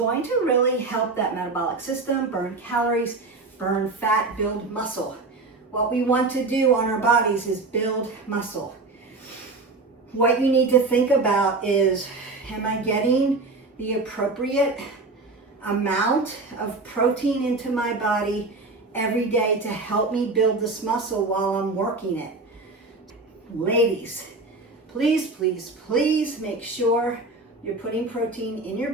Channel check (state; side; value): quieter; left; 3.5 dB